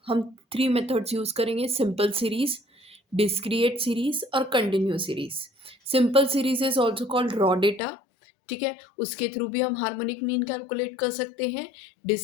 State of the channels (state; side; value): drops out; right; at 7.8 s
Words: हम थ्री मेथड्स यूज़ करेंगे: सिंपल सीरीज, डिस्क्रिएट सीरीज और continue series. Simple series is also called raw data, ठीक है, उसके थ्रू भी हम हार्मोनिक मीन कैलकुलेट कर सकते हैं।